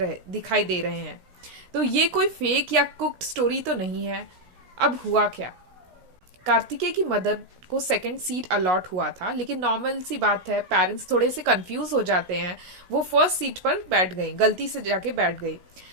दे रहे हैं। तो ये कोई फेक या कुक्ड स्टोरी तो नहीं है। अब हुआ क्या? कार्तिकेय की मदर को सेकंड सीट अलॉट हुआ था, लेकिन नॉर्मल सी बात है, पेरेंट्स थोड़े से कंफ्यूज हो जाते हैं। वो फर्स्ट सीट पर बैठ गई, गलती से जाके बैठ गई।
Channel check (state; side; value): late; left; 16 ms